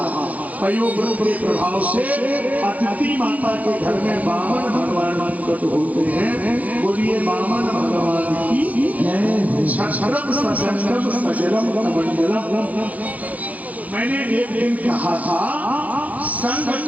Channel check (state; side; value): late; left; 0.075 ms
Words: है। पयोव्रत के प्रभाव से अदिति माता के घर में वामन भगवान प्रकट होते हैं। बोलिए वामन भगवान की क्षरम सजलम सजलम कमंडलम। मैंने एक दिन कहा था संघ